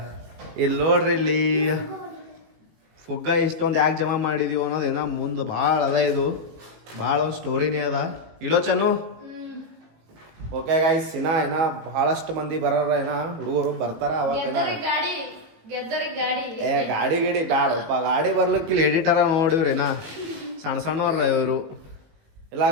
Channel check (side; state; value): left; late; 18 ms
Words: ಇಲ್ಲಿ ನೋಡ್ರಿ, ಇಲ್ಲಿ ಫುಗ್ಗ ಇಷ್ಟೊಂದು ಯಾಕೆ ಜಮಾ ಮಾಡಿದೀವಿ ಅನ್ನೋದೇನ ಮುಂದೆ ಭಾಳ ಅದ. ಇದು ಭಾಳ ಒಂದು ಸ್ಟೋರಿನೇ ಅದ. ಇಲ್ಲೋ ಚನ್ನು. ಓಕೆ ಗೈಸ್, ಏನ ಬಹಳಷ್ಟು ಮಂದಿ ಬರೋರ ಹುಡುಗರು ಬರ್ತಾರ. ಅವಾಗ ಗಾಡಿ ಬ್ಯಾಡಪ್ಪ, ಗಾಡಿ ಬರ್ಲಿಕ್ಕೆ ಇಲ್ಲಿ ಎಡಿಟರ ನೋಡಿವ್ರೇನ ಸಣ್ಣ ಸಣ್ಣವ್ರ ಇವರು ಇಲ್ಲ